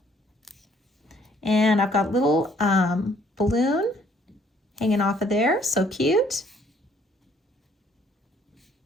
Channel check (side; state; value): both; normal; correlation 0.63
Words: And I've got a little balloon hanging off of there. So cute.